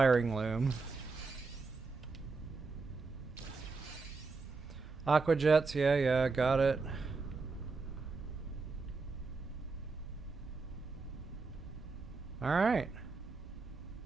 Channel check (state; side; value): quieter; left; 4.2 dB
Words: loom. Aquajets, yeah, got it. Alright.